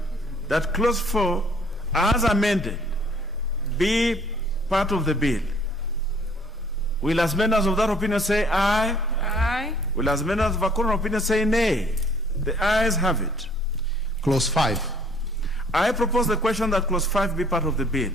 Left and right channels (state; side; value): normal; both; correlation 0.59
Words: that clause 4 as amended be part of the bill. Will as members of that opinion say aye? Aye. Will as members of a contrary opinion say nay? The ayes have it. Clause 5. I propose the question that clause 5 be part of the bill.